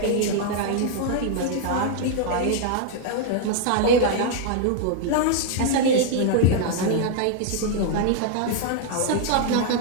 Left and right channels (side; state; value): both; different; correlation -0.01